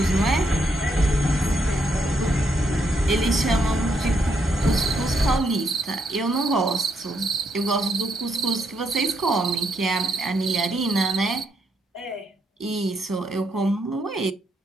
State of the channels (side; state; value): both; normal; correlation 0.76